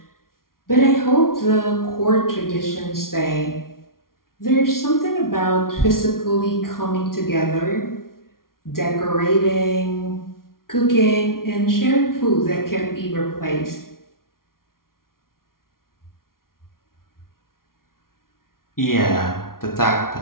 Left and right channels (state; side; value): late; right; 0.92 ms